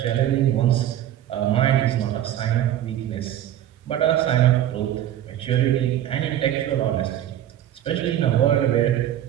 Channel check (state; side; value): quieter; left; 11.7 dB